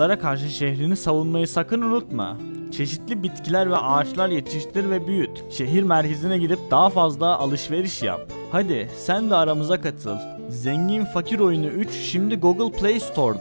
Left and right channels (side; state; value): both; inverted; correlation -1.00